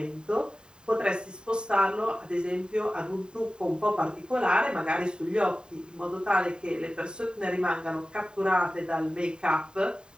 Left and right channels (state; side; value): late; left; 0.048 ms